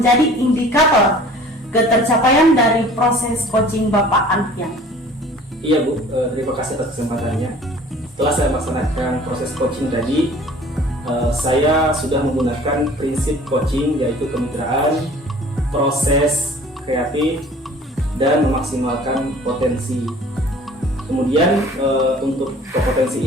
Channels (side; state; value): both; normal; correlation 0.48